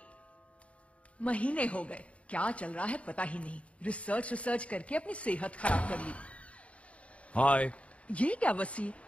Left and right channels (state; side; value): late; right; 0.064 ms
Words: महीने हो गए, क्या चल रहा है पता ही नहीं। रिसर्च करके अपनी सेहत खराब कर ली। हाय। ये क्या वसी,